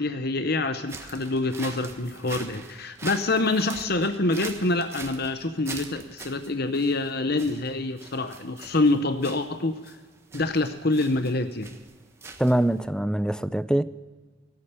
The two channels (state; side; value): normal; both; correlation 0.49